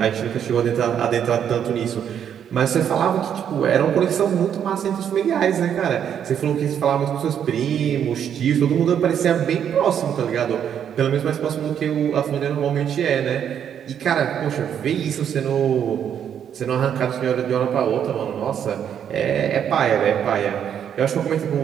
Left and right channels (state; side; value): quieter; left; 8.8 dB